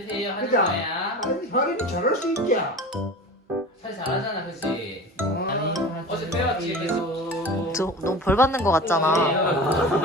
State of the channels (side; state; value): both; normal; correlation 0.35